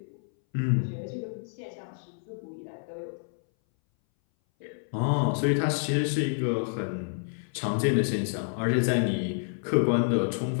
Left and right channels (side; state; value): right; silent; 59 dB below the other